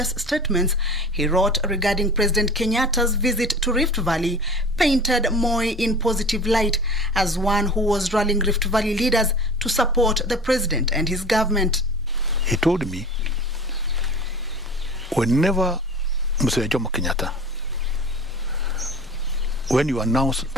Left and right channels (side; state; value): both; normal; correlation 0.39